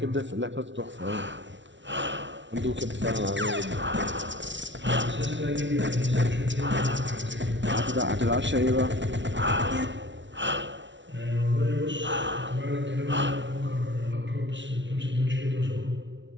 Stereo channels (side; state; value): left; late; 0.54 ms